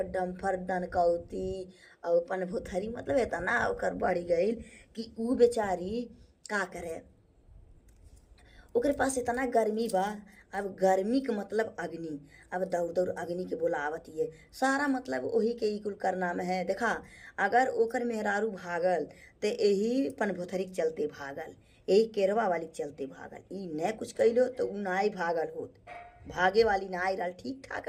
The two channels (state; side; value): identical; both; correlation 1.00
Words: डम्फर दनकौती और अपन भुथरी मतलब इतना ओकर बढ़ गई कि ऊ बेचारी का करे ओकरे पास इतना गर्मी बा। अब गर्मी के मतलब अग्नि अब दौड़ अग्नि के बोलावत है सारा मतलब वही के ई कुल करना में है। देखा अगर ओकर मेहरारू भागल तो यही पन भोथरी के चलते भागल यही केरवा वाली के चलते भागल ई न कुछ कैलो तो ऊ नाई भागल होत भागे वाली नाई रहा ठीक ठाक